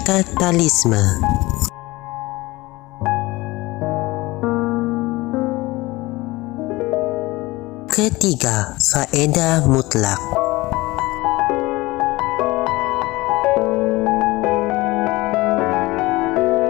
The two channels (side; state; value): right; quieter; 20.8 dB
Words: Ketiga, faedah mutlak.